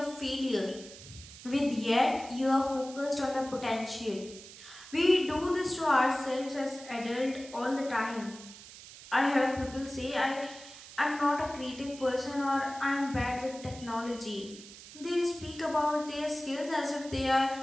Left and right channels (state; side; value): noise; right; hiss, 16 dB below the sound